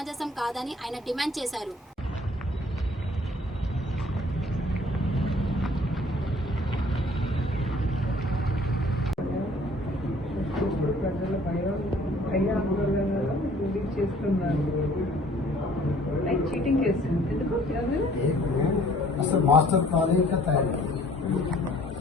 కాదని ఆయన డిమాండ్ చేశారు. అసలు మాస్టర్ ప్లాన్ ఇంకా తయారు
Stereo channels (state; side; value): normal; both; correlation 0.56